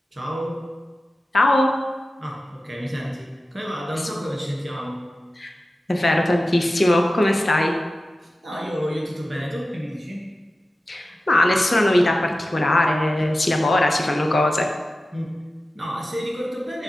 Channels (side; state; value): both; normal; correlation 0.94